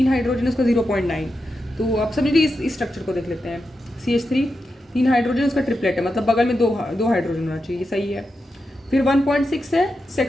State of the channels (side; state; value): both; normal; correlation 0.88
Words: हाइड्रोजन, उसका 0.9। तो आप समझिए इस स्ट्रक्चर को देख लेते हैं। CH3 3 हाइड्रोजन, उसका ट्रिपलेट है, मतलब बगल में दो हाइड्रोजन होना चाहिए, सही है। फिर 1.6 है,